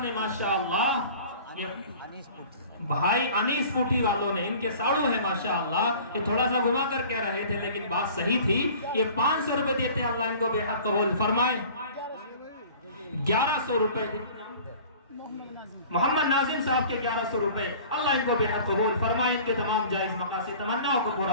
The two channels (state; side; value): inverted; both; correlation -0.45